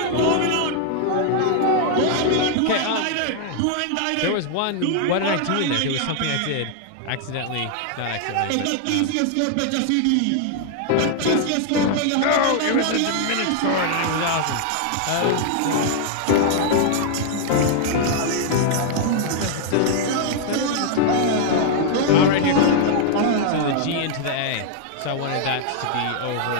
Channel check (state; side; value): different; both; correlation -0.01